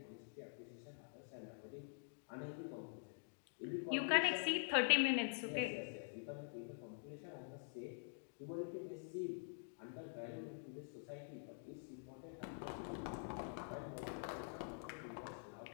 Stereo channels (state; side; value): silent; right; digital silence